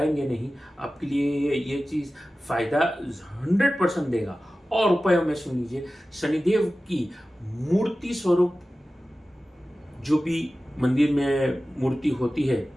नहीं, आपके लिए ये चीज़ फ़ायदा 100% देगा। और उपायों में सुन लीजिए, शनिदेव की मूर्ति स्वरूप जो भी मंदिर में मूर्ति होती है,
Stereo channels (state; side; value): normal; both; correlation 0.95